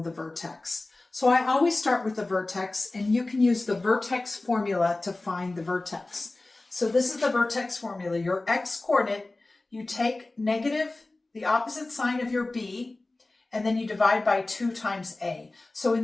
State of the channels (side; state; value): right; quieter; 3.0 dB